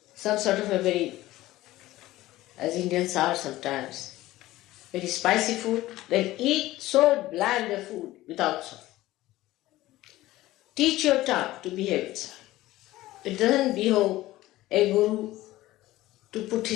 some sort of a very, as Indians are sometimes, very spicy food, then eat so bland a food without salt. Teach your tongue to behave itself. It doesn't behove a guru to put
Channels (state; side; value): quieter; right; 16.7 dB